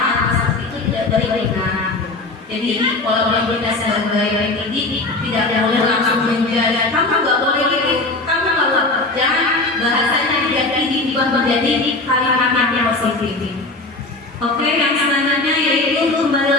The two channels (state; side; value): quieter; right; 3.1 dB